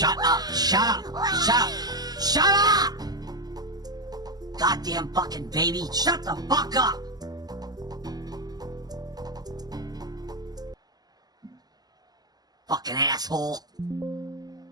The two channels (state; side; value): late; left; 0.19 ms